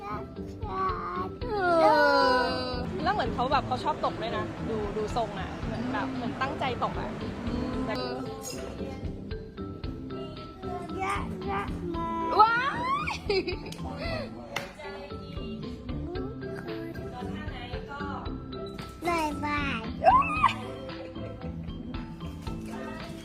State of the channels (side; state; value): both; identical; correlation 1.00